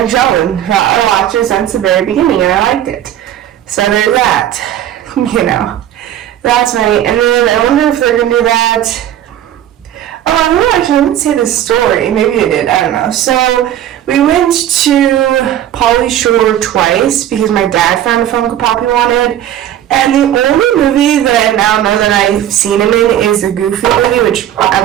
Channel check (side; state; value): left; quieter; 11.4 dB